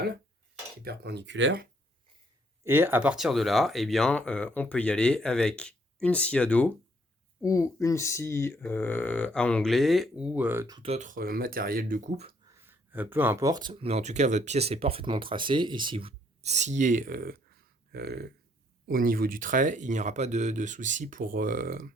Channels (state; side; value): normal; both; correlation 0.67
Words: qui est perpendiculaire. Et à partir de là, eh bien, on peut y aller avec une scie à dos ou une scie à onglet ou tout autre matériel de coupe, peu importe. Mais en tout cas, votre pièce est parfaitement tracée et si vous sciez au niveau du trait, il n'y aura pas de souci pour